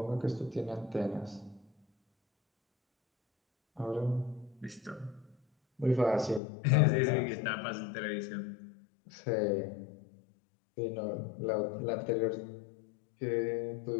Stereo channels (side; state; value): right; drops out; at 6.4 s